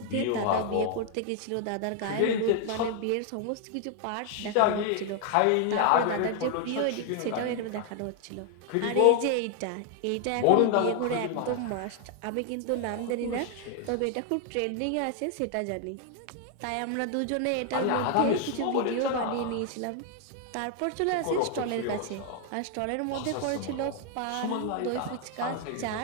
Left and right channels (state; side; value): different; both; correlation 0.00